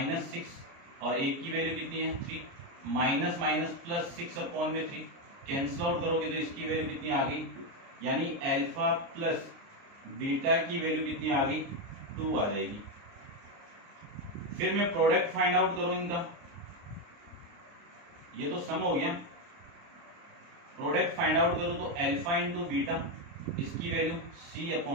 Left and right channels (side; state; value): left; late; 29 ms